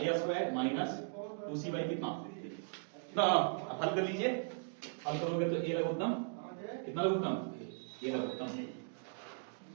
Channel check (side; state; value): left; silent; digital silence